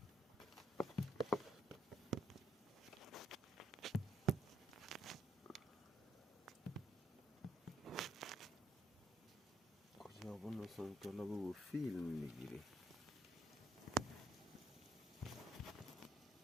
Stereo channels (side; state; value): both; normal; correlation 0.73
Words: کجا بود مثلا طلب و فیلم میگیری؟